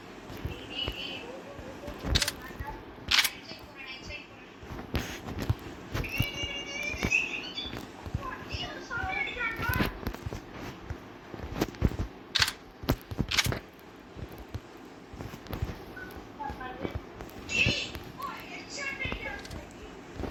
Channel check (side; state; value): both; identical; correlation 1.00